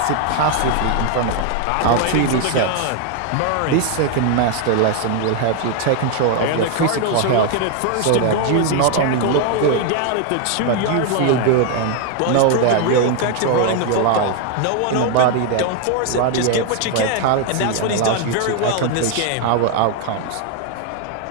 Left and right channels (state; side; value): different; both; correlation 0.01